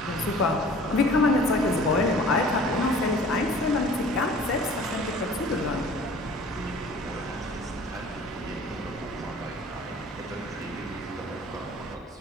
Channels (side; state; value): both; normal; correlation 0.48